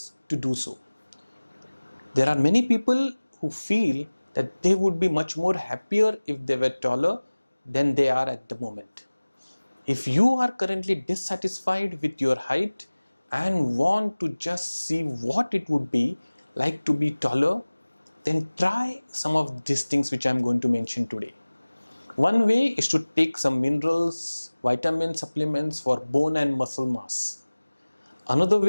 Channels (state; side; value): inverted; both; correlation -1.00